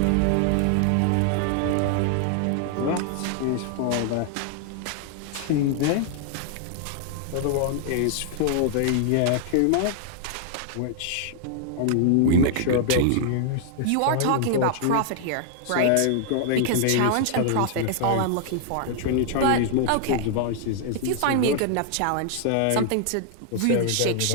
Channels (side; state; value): both; different; correlation 0.00